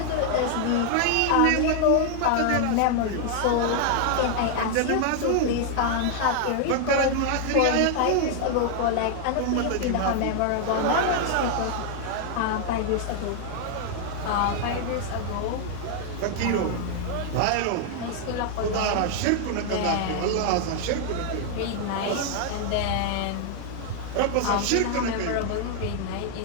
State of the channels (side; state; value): both; different; correlation 0.00